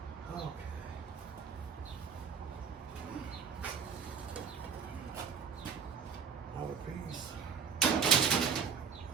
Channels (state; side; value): quieter; left; 6.4 dB